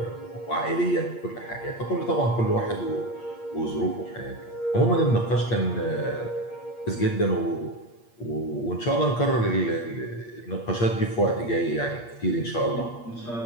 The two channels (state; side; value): late; right; 8.6 ms